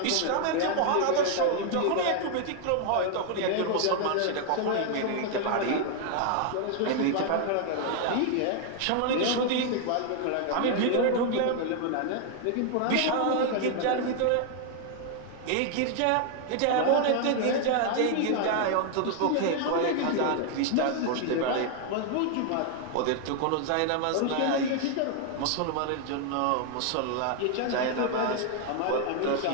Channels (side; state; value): both; different; correlation 0.00